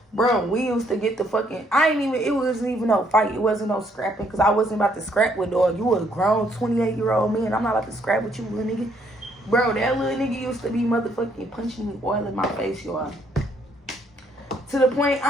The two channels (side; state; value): both; normal; correlation 0.69